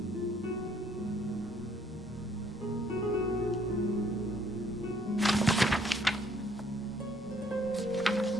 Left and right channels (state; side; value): normal; both; correlation 0.64